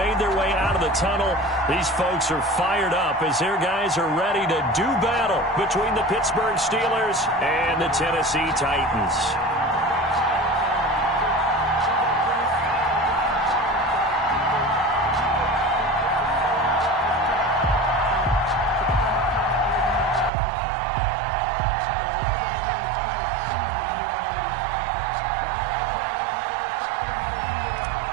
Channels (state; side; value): drops out; left; at 20.3 s